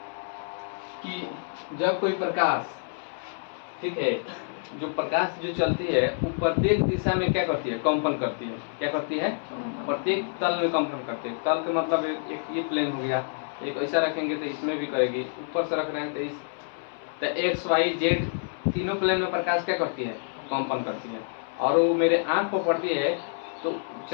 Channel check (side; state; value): right; silent; 60 dB below the other